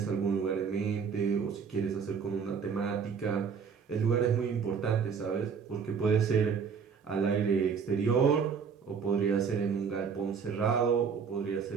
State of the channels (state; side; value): quieter; left; 6.2 dB